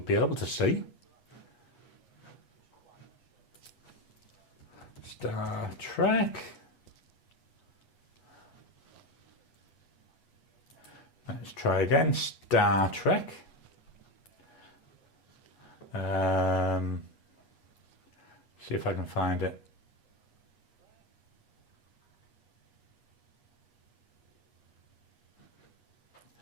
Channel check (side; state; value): right; late; 8.3 ms